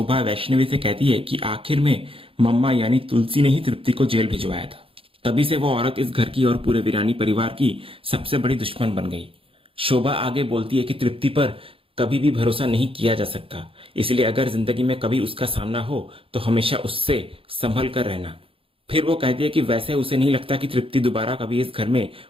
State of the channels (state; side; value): late; left; 0.27 ms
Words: वैष्णवी से कहती है कि आखिर में मम्मा यानी तुलसी ने ही तृप्ति को जेल भिजवाया था। तभी से वो औरत इस घर की और पूरे वीरानी परिवार की सबसे बड़ी दुश्मन बन गई। शोभा आगे बोलती है कि तृप्ति पर कभी भी भरोसा नहीं किया जा सकता, इसलिए अगर जिंदगी में कभी उसका सामना हो तो हमेशा उससे संभल कर रहना। फिर वो कहती है कि वैसे उसे नहीं लगता कि तृप्ति दोबारा कभी इस घर में